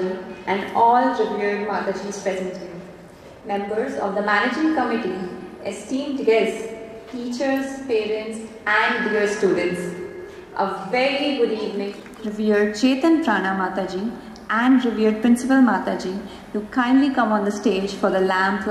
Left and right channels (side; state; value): both; identical; correlation 1.00